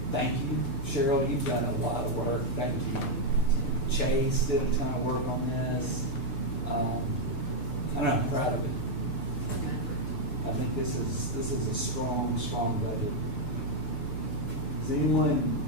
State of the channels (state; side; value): late; right; 6.8 ms